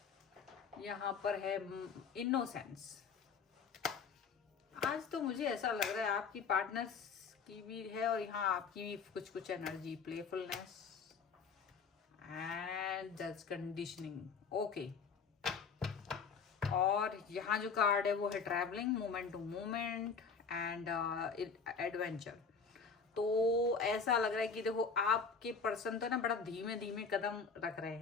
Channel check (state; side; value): quieter; right; 5.5 dB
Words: पर है इनोसेंस। आज तो मुझे ऐसा लग रहा है आपकी पार्टनर्स की भी है और यहाँ आपकी भी कुछ एनर्जी, प्लेफुलनेस एंड जज कंडीशनिंग। ओके, और यहाँ जो कार्ड है वो है travelling, moment to moment and adventure. तो ऐसा लग रहा है कि देखो आपके पर्सन तो ना बड़ा धीमे धीमे कदम रख रहे